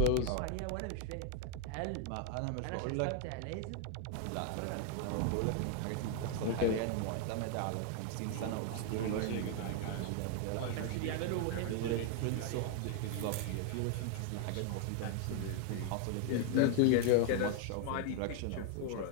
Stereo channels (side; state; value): both; different; correlation 0.00